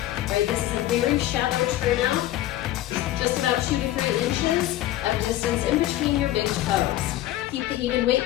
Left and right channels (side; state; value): right; quieter; 14.6 dB